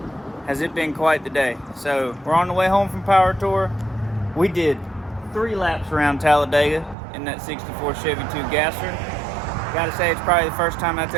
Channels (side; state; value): left; drops out; at 7.0 s